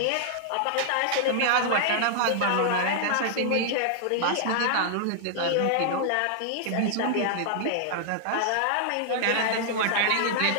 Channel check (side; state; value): both; different; correlation -0.01